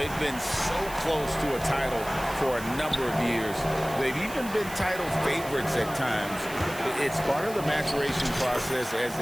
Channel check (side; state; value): right; noise; hiss, 14 dB below the sound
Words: been so close to a title for a number of years. They've even been title favorites at times. It's part of the maturation process, as